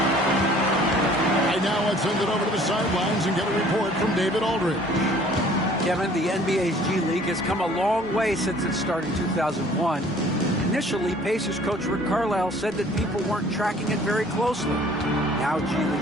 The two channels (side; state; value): both; normal; correlation 0.54